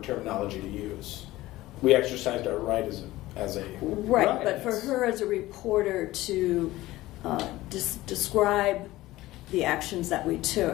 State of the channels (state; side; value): quieter; right; 17.3 dB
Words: terminology to use. We exercised our right as a Right, Right. but for her as a reporter to describe the actions that we